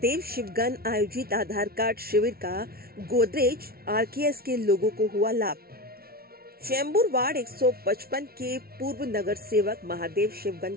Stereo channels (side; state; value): left; late; 0.44 ms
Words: शिवगन आयोजित आधार कार्ड शिविर का गोदरेज आरकेएस के लोगों को हुआ लाभ। चेंबूर वार्ड 155 के पूर्व नगर सेवक महादेव शिवगन